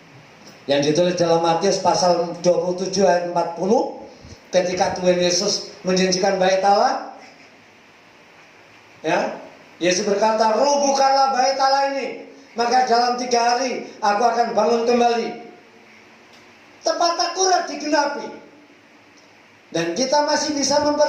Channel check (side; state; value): both; identical; correlation 1.00